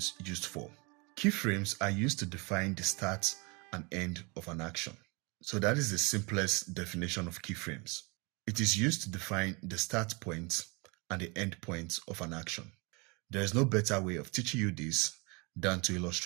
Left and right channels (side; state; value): left; quieter; 29.3 dB